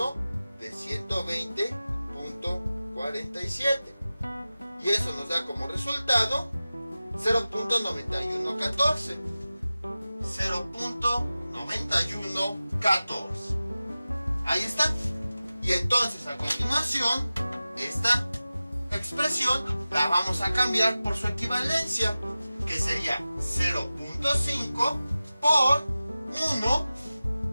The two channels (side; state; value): both; inverted; correlation -0.96